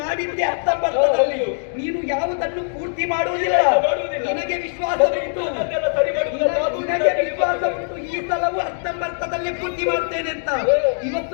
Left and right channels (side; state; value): right; silent; digital silence